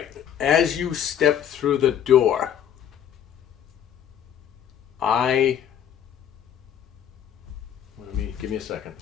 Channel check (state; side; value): quieter; right; 9.4 dB